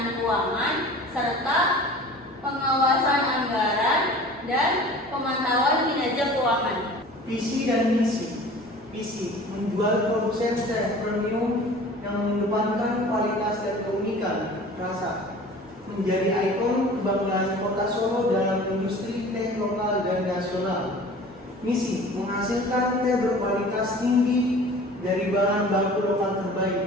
keuangan serta pengawasan anggaran dan pemantauan kinerja keuangan. Visi dan misi. Visi menjual produsen teh premium yang mengedepankan kualitas dan keunikan rasa, menjadi ikon kebanggaan Kota Solo dalam industri teh lokal dan nasional. Misi menghasilkan teh berkualitas tinggi dari bahan baku lokal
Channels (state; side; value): normal; both; correlation 0.43